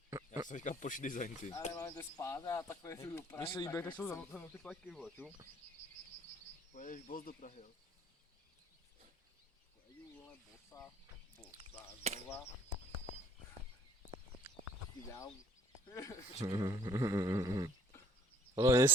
Já jsem říkal pošli design, ty. Ale máme to spát a takové tu dopravy. Mně se líbí, jak jsou za ty pleky, vole, ču? Pojedeš boss do Prahy, jo? Pojedu, vole, bosa, znova. Ideál. Hlavně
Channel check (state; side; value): normal; both; correlation 0.58